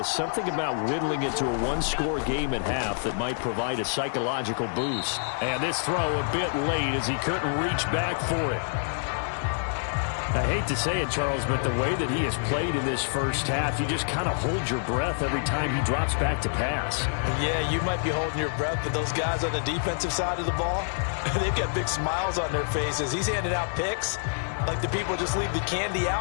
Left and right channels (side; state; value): right; silent; 60 dB below the other